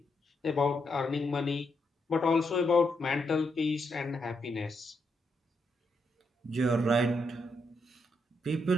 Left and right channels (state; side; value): normal; both; correlation 0.80